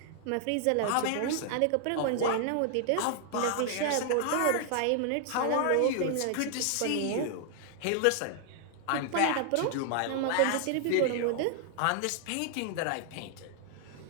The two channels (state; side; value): different; both; correlation 0.00